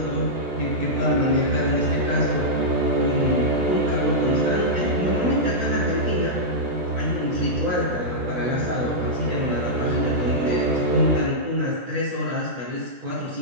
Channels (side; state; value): left; late; 17 ms